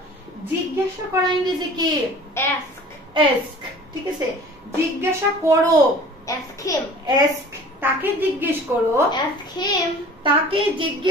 জিজ্ঞাসা করা ইংরেজি কি? Ask. ask. ঠিক আছে, জিজ্ঞাসা করো। Ask him. ask. তাকে জিজ্ঞেস করো। Ask him. তাকে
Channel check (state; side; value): normal; both; correlation 0.45